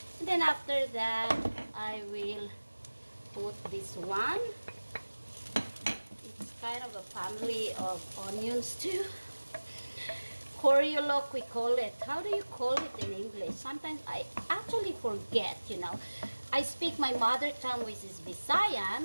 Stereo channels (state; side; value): inverted; both; correlation -1.00